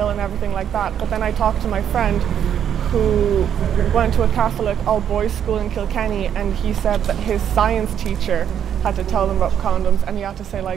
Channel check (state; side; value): quieter; left; 9.2 dB